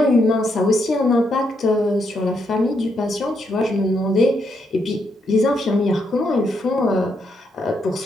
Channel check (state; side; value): normal; both; correlation 0.78